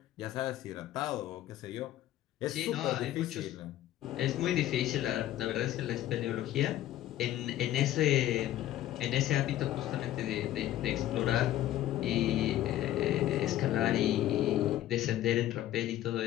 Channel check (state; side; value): quieter; right; 13.4 dB